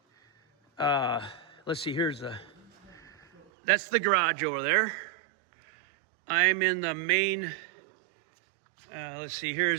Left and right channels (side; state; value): left; drops out; at 3.4 s